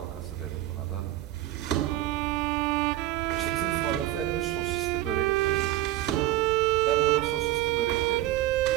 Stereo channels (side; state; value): left; quieter; 15.1 dB